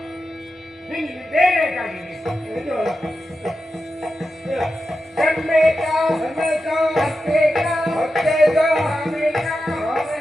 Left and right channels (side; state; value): both; normal; correlation 0.90